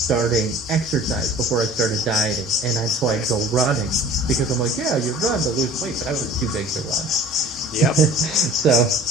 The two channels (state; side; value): normal; both; correlation 0.45